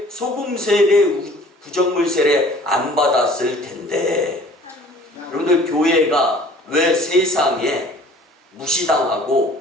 소금 세례, 구정물 세례 안 받았을 텐데. 여러분들, 교회가 왜 세상에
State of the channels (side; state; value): both; normal; correlation 0.50